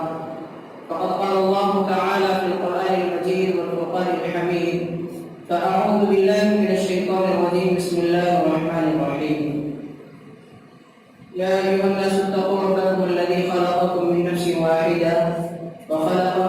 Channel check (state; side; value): identical; both; correlation 1.00